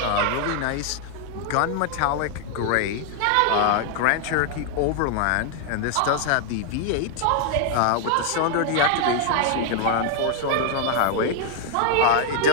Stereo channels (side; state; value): both; different; correlation 0.00